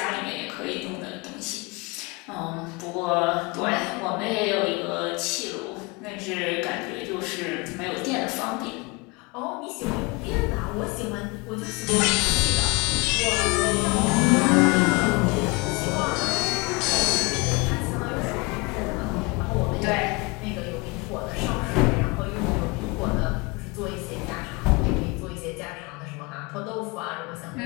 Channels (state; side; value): quieter; right; 26.9 dB